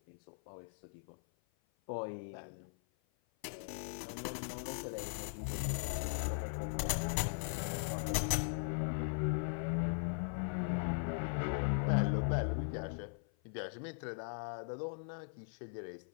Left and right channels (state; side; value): silent; right; 51 dB below the other